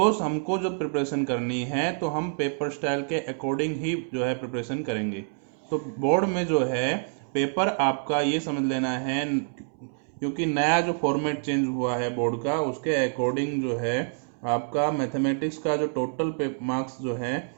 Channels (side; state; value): left; silent; 60 dB below the other